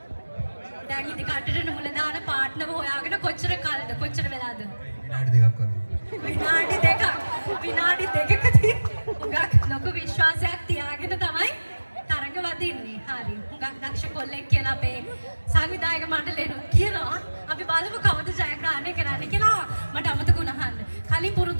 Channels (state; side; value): inverted; both; correlation -1.00